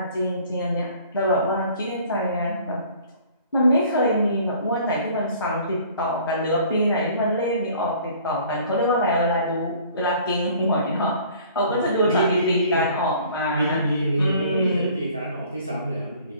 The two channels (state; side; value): inverted; both; correlation -0.52